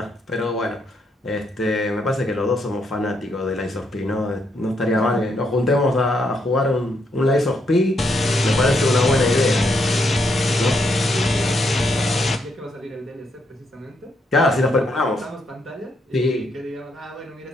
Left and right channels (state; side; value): normal; both; correlation 0.77